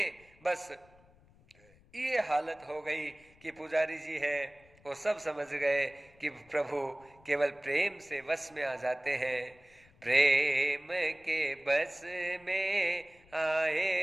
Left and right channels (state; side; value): noise; left; rumble, 28 dB below the sound